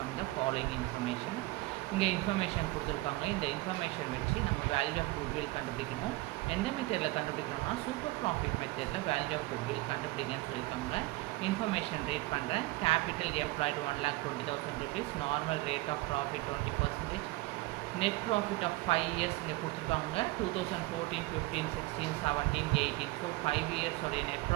the following information. இங்கே information கொடுத்துருக்காங்க. இந்த information வச்சு நம்ம value of goodwill கண்டுபிடிக்கணும். எந்த மெத்தடில் கண்டுபிடிக்கணும்னா super profit மெத்தடில் வேல்யூ ஆஃப் குட்வில் கண்டுபிடிங்கன்னு சொல்லியிருக்காங்க. இன்ஃபர்மேஷன் ரீட் பண்ணுறேன். Capital employed 1,20,000 rupees, normal rate of profit 20%, net profit of 5 years இங்கே கொடுத்துருக்காங்க. 2014, 15, 16, 17, 18. ஸோ 5 years உடைய net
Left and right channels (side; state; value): left; quieter; 20.7 dB